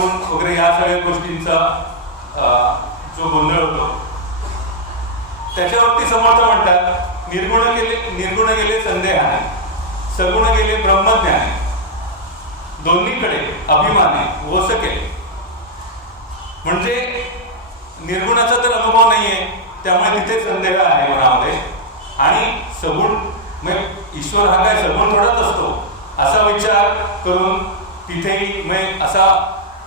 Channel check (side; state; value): both; normal; correlation -0.04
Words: वगैरे या सगळ्या गोष्टींचा जो गोंधळ होतो त्याच्यावरती समर्थ म्हणतात, निर्गुण गेले संदेहाने, सगुण गेले ब्रह्मज्ञाने, दोन्हीकडे अभिमाने वस केले. म्हणजे निर्गुणाचा तर अनुभव नाहीये, त्यामुळे तिथे संदेह आहे मनामध्ये. आणि सगुण म्हणजे ईश्वर हा काय सगुण थोडाच असतो असा विचार करून तिथेही म्हणजे असा